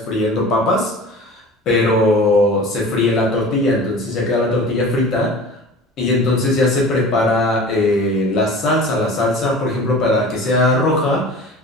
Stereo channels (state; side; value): normal; both; correlation 0.39